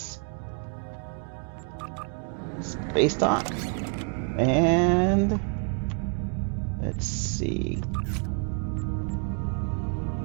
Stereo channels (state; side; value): quieter; left; 39.7 dB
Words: Space Dock. And let's see.